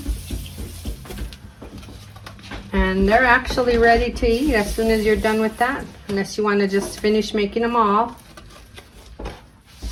And they're actually ready to eat as soon as you're done with that. Unless you want to just finish making them all.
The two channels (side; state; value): both; identical; correlation 1.00